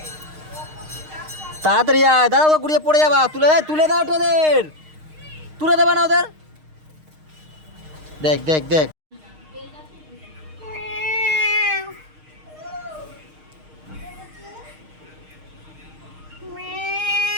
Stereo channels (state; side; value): late; left; 6.5 ms